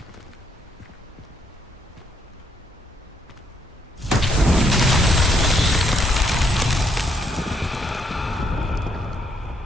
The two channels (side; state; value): both; normal; correlation 0.73